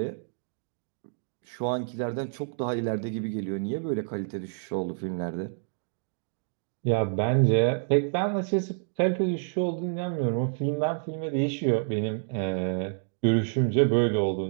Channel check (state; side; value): silent; left; digital silence